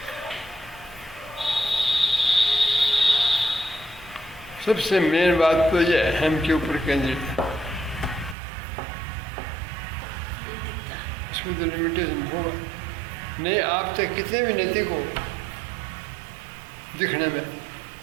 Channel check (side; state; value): left; drops out; at 8.3 s